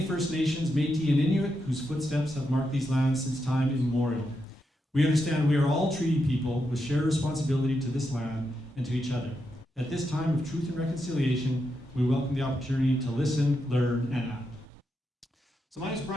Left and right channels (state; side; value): normal; both; correlation 0.84